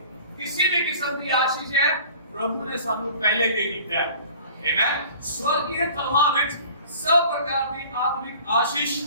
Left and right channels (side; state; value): both; inverted; correlation -0.46